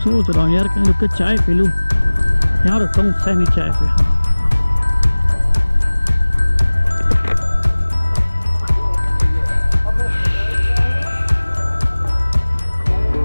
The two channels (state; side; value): inverted; both; correlation -1.00